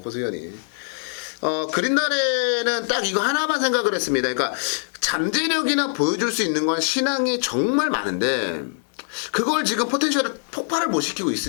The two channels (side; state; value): right; silent; digital silence